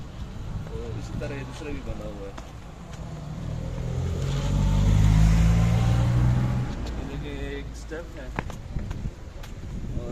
तो इसी तरह ये दूसरा भी बना हुआ है, एक स्टेप है और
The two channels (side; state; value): both; identical; correlation 1.00